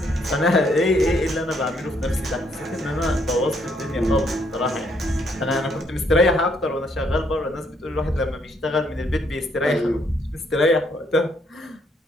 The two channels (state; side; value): normal; both; correlation 0.71